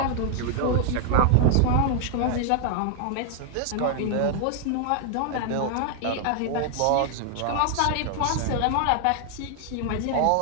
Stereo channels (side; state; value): both; different; correlation 0.00